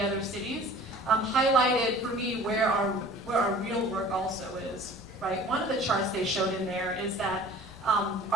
other cities highlighted for me where our real work also is, right? One of the charts they showed in there is that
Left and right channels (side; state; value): both; normal; correlation 0.46